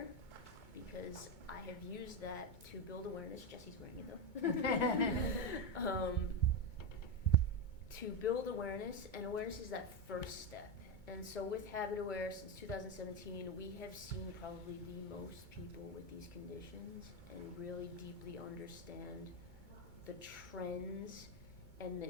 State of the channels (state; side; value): late; right; 2.2 ms